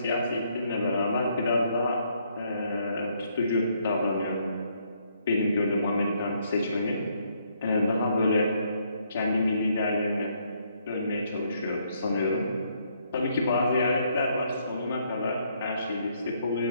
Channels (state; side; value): inverted; both; correlation -0.71